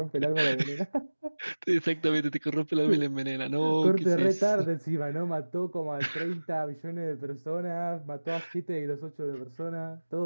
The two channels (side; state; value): both; inverted; correlation -1.00